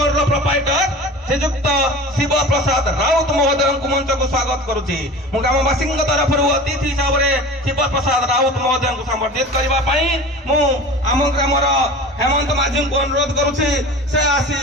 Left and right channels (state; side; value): normal; both; correlation 0.36